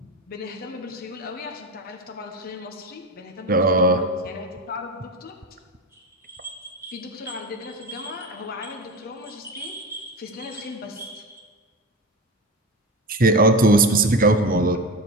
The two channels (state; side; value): normal; both; correlation 0.24